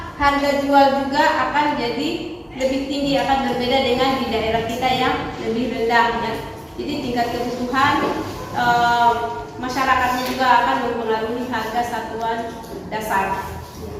harga jual juga akan jadi lebih tinggi, akan berbeda dengan di daerah kita yang lebih rendah ya. Jadi tingkat kebutuhan masyarakatnya juga akan mempengaruhi harga satuan dasar.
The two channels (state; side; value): identical; both; correlation 1.00